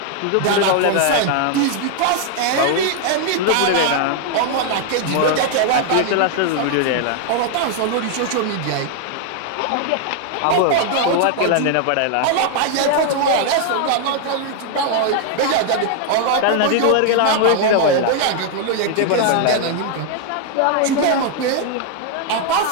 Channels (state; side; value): different; both; correlation 0.00